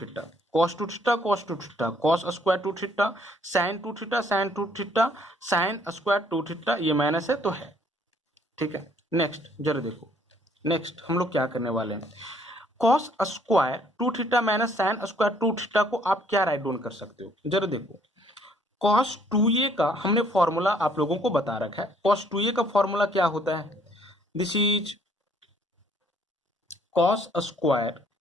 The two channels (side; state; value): both; normal; correlation 0.63